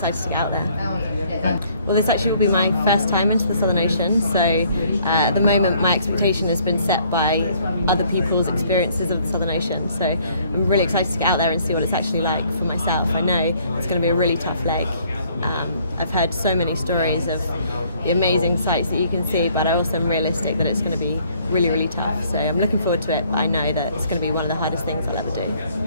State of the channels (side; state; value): both; inverted; correlation -0.62